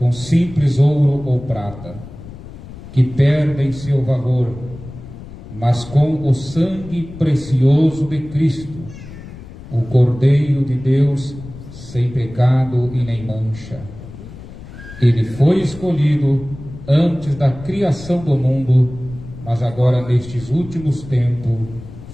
simples ouro ou prata, que perdem seu valor, mas com o sangue precioso de Cristo, o Cordeiro de Deus, sem pecado e nem mancha. Ele foi escolhido antes da criação do mundo, mas agora nestes últimos tempos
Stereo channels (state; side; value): noise; left; rumble, 15 dB below the sound